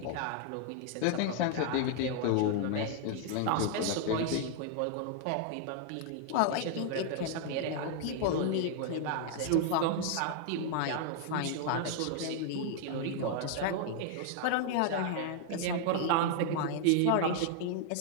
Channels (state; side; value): different; both; correlation 0.00